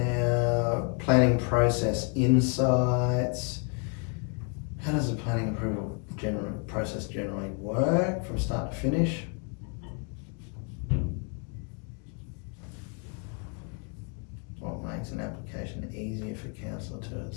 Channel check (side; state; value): right; quieter; 37.3 dB